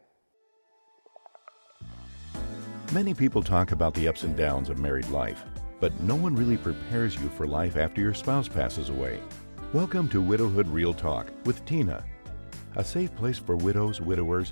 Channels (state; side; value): inverted; both; correlation -1.00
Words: Many people talk about the ups and downs of married life, but no one really prepares you for life after your spouse passes away. Welcome to Widowhood Real Talk with Tina, a safe place for widows, widowers,